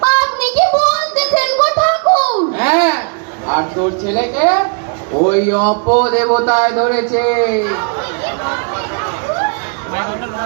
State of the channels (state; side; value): quieter; left; 38.6 dB